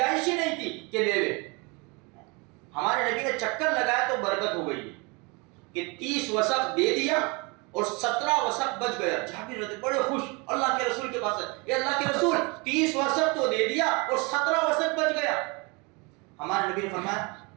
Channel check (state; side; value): quieter; left; 29.0 dB